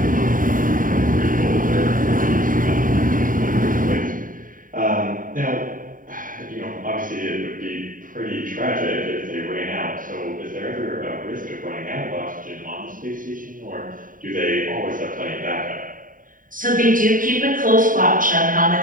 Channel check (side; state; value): left; late; 0.39 ms